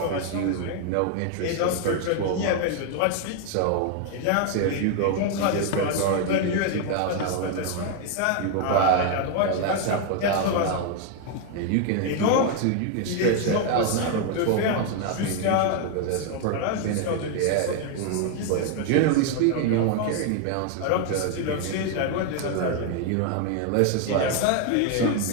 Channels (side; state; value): both; different; correlation 0.01